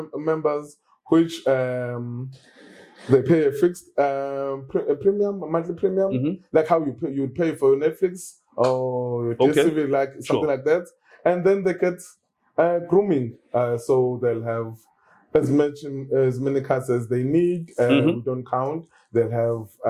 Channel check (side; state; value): both; identical; correlation 1.00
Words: members which they pay a fixed a monthly premium, like how you would pay for Netflix or your DSTV, like something like that. And then they get grooming. So they'll have as many cars as they need. We don't count. They'll have